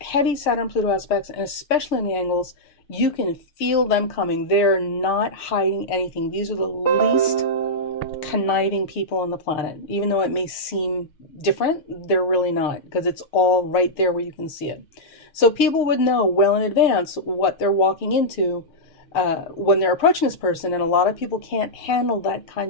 Saturn-Pluto aspects, and especially in the angles, you can feel them coming. They're not hiding anything. These are the least conniving people on the planet. Even though it may seem different, they're really not, because it's all right there where you can see it. So people would know well in advance what they're walking into when they're approaching this person, and a lot of people can't handle that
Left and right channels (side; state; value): right; late; 6.5 ms